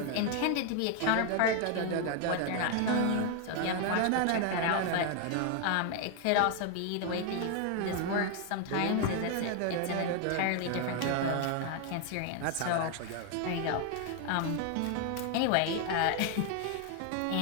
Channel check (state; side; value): different; both; correlation 0.00